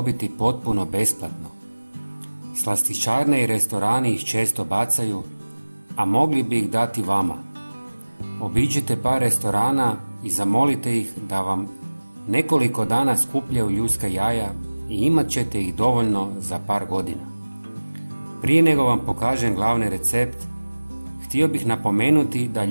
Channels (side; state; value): both; inverted; correlation -1.00